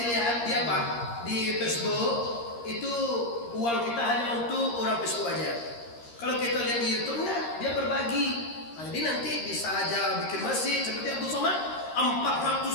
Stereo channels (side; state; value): right; late; 13 ms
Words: lihat di apa di Facebook itu uang kita hanya untuk orang Facebook aja. Kalau kita lihat di YouTube nah, dia berbagi. Nah, jadi nanti bisa aja bikin masjid seperti Abdul Somad